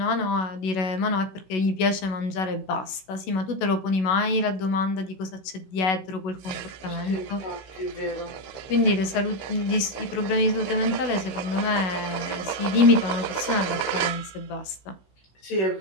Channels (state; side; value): late; right; 16 ms